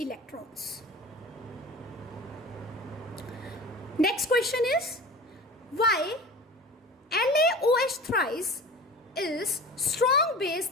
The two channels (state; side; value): normal; both; correlation 0.36